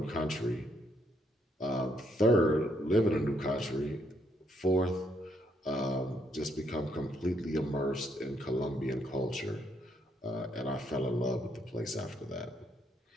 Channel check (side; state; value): both; normal; correlation 0.73